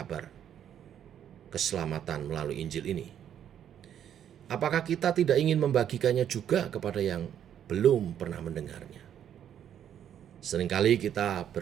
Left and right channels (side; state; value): left; quieter; 9.7 dB